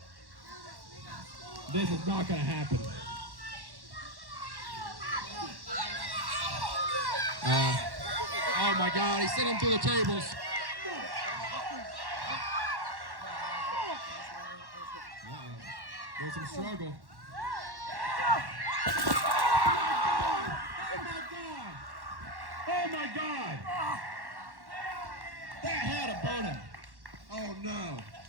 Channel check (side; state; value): left; late; 1.1 ms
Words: This is not gonna happen. Oh my God, he sent him through the tables. There's some struggle. Oh my God! Oh my God! That had to burn him. Oh no.